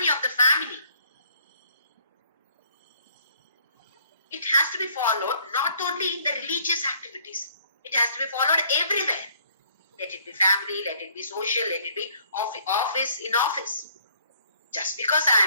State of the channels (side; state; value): both; inverted; correlation -0.62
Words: of the family. It has to be followed not only in the religious activities. It has to be followed everywhere. Let it be family, let it be social, let it be office in office. Just because